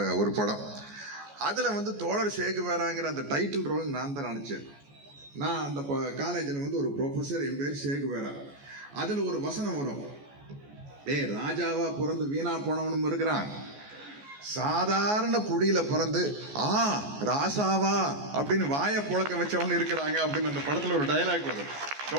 ஒரு படம். அதில் வந்து தோழர் சேகுவேராங்கிற அந்த டைட்டில் ரோல் நான் தான் நடித்தேன். நான் அந்த காலேஜில் வந்து ஒரு ப்ரொஃபஸர், என் பேர் சேகுவேரா. அதில் ஒரு வசனம் வரும், ராஜாவா பிறந்து வீணா போனவனும் இருக்கிறான், சாதாரண குடியில பிறந்து ராசாவா அப்படின்னு வாயை புழக்க வச்சவனு இருக்கிறாங்க அப்படின்னு அந்த படத்துல ஒரு டயலாக் வரும்.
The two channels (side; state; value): left; late; 14 ms